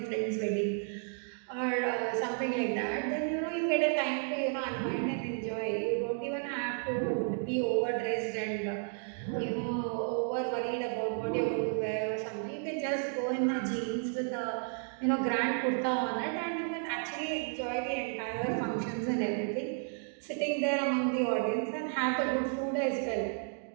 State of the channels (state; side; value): silent; left; 56 dB below the other